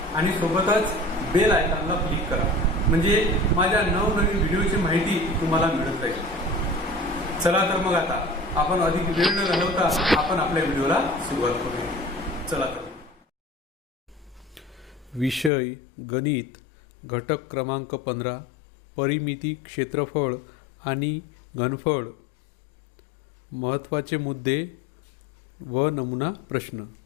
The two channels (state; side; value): drops out; right; at 15.5 s